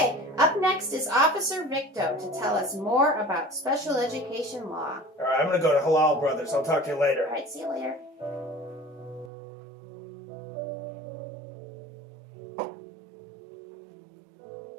up next is Officer Victo to tell us more about special education law. All right, I'm going to go to Halal Brothers. I'll talk to you later. All right, see you later.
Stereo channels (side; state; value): left; drops out; at 9.3 s